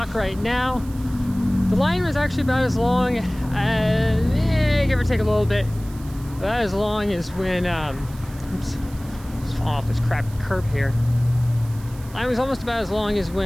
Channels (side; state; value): right; noise; hiss, 22 dB below the sound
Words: right now. The line was actually about as long, give or take a little bit, about as long as when, oops, just falling off this crappy curb here. Line was almost about as long as